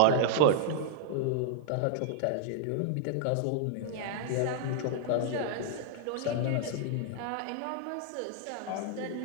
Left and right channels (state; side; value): different; both; correlation -0.01